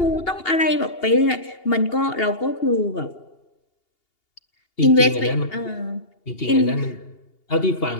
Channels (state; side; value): late; right; 2.8 ms